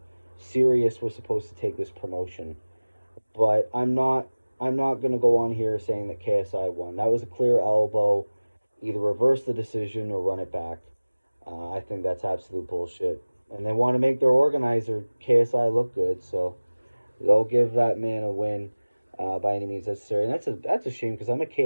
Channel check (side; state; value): both; inverted; correlation -1.00